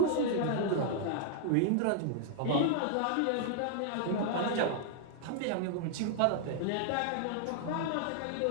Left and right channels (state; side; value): different; both; correlation 0.00